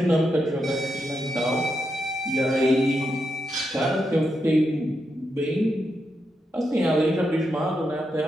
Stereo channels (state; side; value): normal; both; correlation 0.84